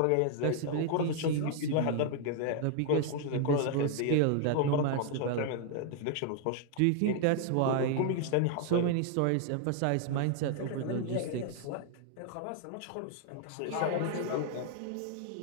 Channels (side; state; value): both; different; correlation 0.00